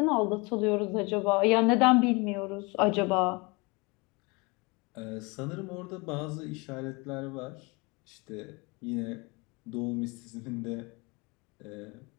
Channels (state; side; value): quieter; right; 27.4 dB